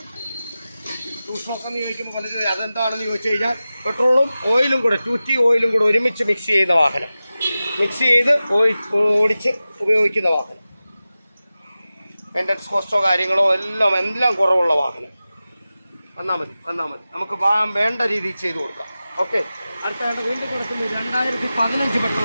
എന്ന് ചോദിക്കുമ്പോൾ പലരും അതെന്താണെന്ന് ചോദിച്ചു കഴിഞ്ഞാൽ പെട്രോളും ഓയിലും കൂടെ 2T ഓയിലും കൂടെ ഒരുമിച്ച് മിക്സ് ചെയ്യുന്ന വാഹനം, മിക്സ് ചെയ്ത് ഓടിച്ച് ഉപയോഗിക്കുന്ന വാഹനം. മെയിൻ്റനൻസ് കോസ്റ്റോ കാര്യങ്ങളോ എല്ലാം കുറവുള്ള വാഹനം. വന്നാൽ മതി നമുക്ക് വേണ്ട രീതിയിൽ ചെയ്തു കൊടുക്കാം. ഓക്കെ, അടുത്തായിട്ട് വീണ്ടും കൊടുക്കുന്നത് 2015 പെട്രോൾ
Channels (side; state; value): both; inverted; correlation -0.95